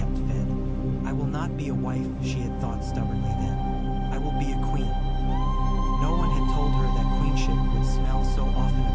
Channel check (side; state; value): both; identical; correlation 1.00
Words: fed. I will not be a wife, she had thought stubbornly then. I will be a queen. No one had told her that queenship would smell so often